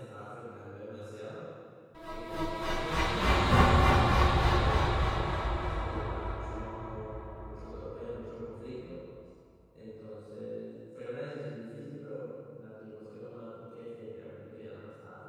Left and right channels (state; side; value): identical; both; correlation 1.00